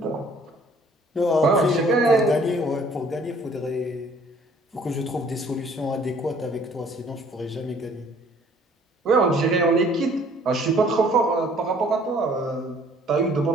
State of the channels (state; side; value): normal; both; correlation 0.57